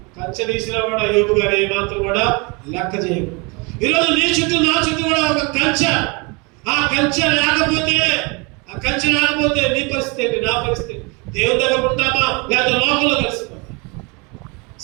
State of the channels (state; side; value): quieter; left; 29.6 dB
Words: కంచె తీసినా కూడా యోబు గారు ఏమాత్రం కూడా లెక్క చేయరు. ఈరోజు నీ చుట్టూ నా చుట్టూ కూడా ఒక కంచె. ఆ కంచె లేకపోతే నీ పరిస్థితి ఏంటి, నా పరిస్థితి? దేవుని దగ్గర ఉంటామా లేదా లోకంలో కలిసిపోతాం?